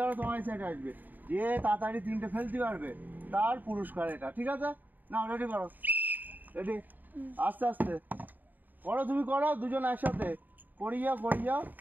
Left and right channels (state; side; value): late; left; 0.087 ms